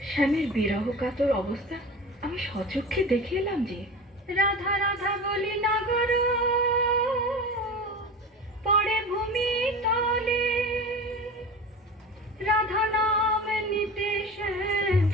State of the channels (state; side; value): normal; both; correlation 0.32